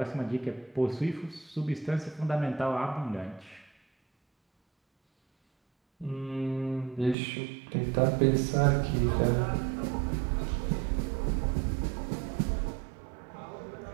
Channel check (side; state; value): left; drops out; at 7.2 s